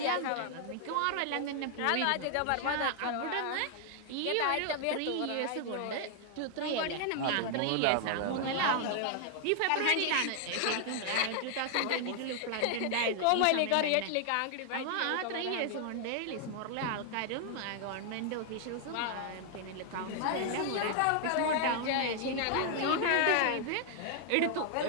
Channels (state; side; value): different; both; correlation 0.00